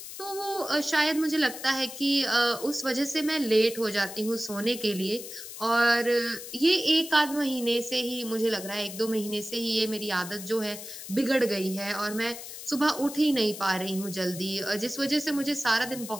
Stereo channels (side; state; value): left; noise; hiss, 11 dB below the sound